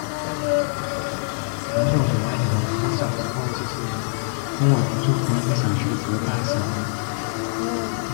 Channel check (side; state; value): right; silent; digital silence